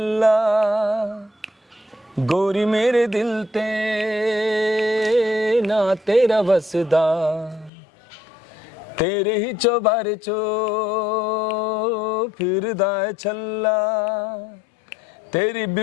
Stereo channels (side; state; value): right; drops out; at 7.7 s